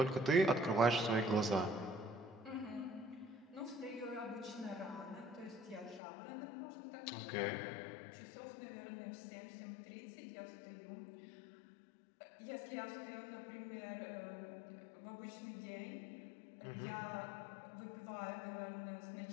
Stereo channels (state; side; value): drops out; right; at 6.0 s